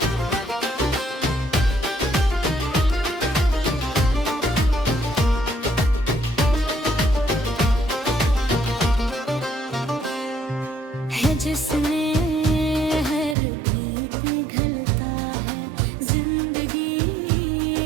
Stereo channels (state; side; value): drops out; left; at 13.4 s